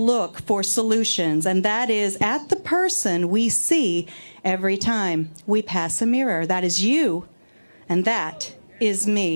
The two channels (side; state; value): both; inverted; correlation -1.00